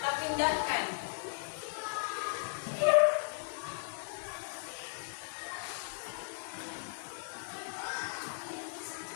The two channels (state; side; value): silent; right; digital silence